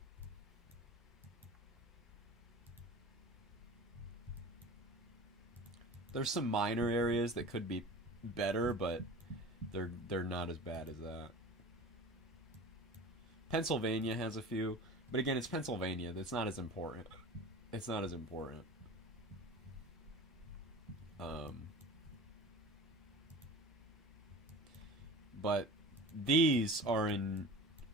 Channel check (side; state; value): both; normal; correlation 0.37